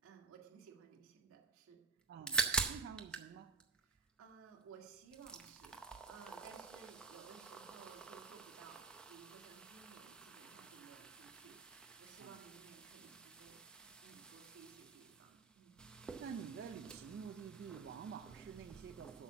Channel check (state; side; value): quieter; left; 4.5 dB